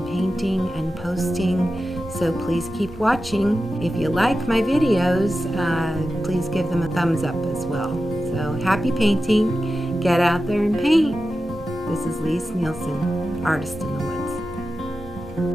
painting and posting, so please keep watching. If you like my videos, please give them a thumbs up as well. So happy painting. Get out there and paint. This is Lise Nielsen, Artist in the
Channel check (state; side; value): normal; both; correlation 0.92